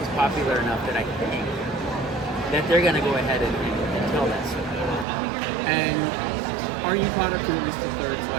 is popular enough that I can hang. that they're going to go ahead and tell that story. And are you caught up to at least the third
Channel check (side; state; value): left; drops out; at 5.1 s